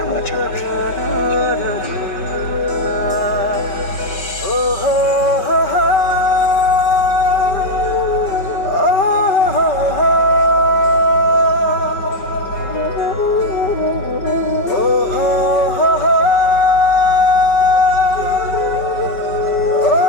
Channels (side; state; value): right; late; 5.2 ms